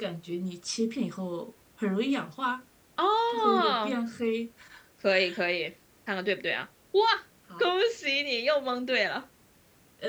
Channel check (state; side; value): identical; both; correlation 1.00